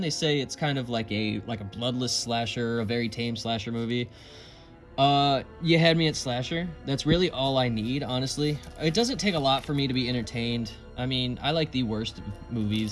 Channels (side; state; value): both; identical; correlation 1.00